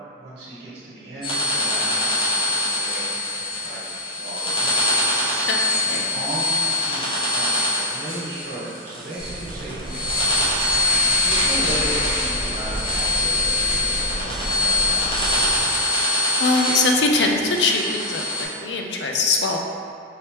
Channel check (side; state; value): both; normal; correlation -0.02